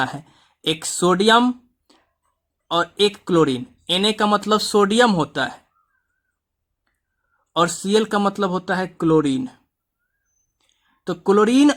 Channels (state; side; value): identical; both; correlation 1.00